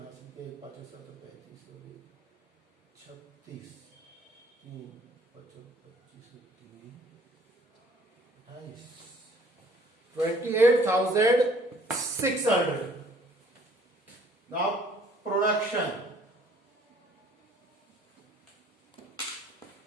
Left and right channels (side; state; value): both; normal; correlation 0.57